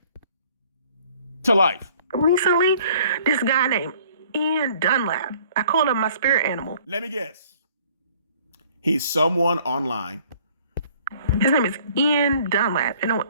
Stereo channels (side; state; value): both; inverted; correlation -0.56